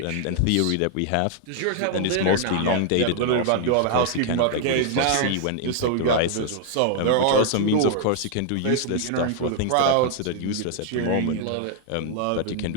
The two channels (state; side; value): different; both; correlation 0.00